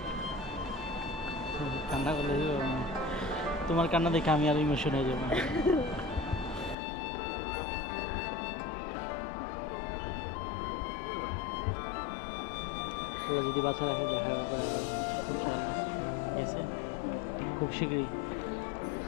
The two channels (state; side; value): drops out; right; at 6.8 s